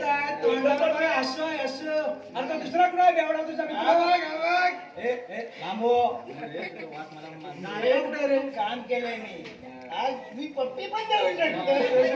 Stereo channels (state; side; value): identical; both; correlation 1.00